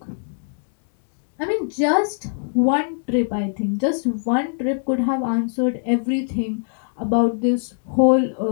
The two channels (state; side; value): silent; right; 64 dB below the other